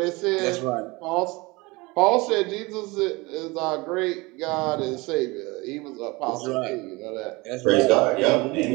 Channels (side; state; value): left; quieter; 24.1 dB